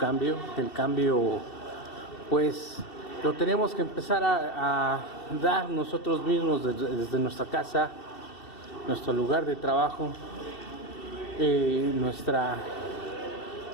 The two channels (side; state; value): right; late; 2.7 ms